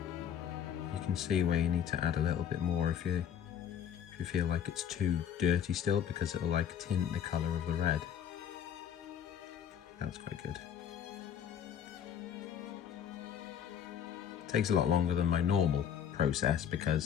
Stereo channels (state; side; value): quieter; right; 8.9 dB